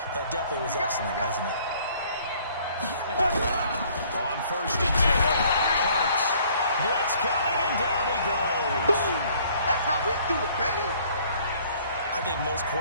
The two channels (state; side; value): inverted; both; correlation -0.58